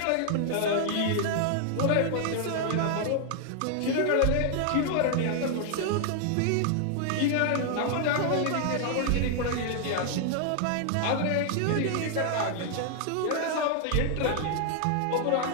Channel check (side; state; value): both; different; correlation 0.00